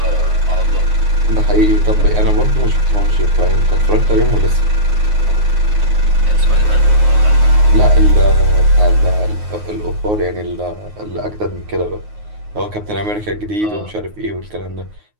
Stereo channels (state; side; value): late; left; 9.5 ms